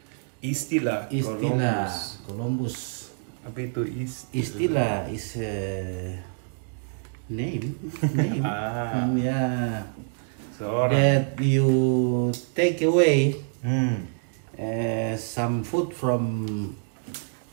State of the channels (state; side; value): silent; left; 61 dB below the other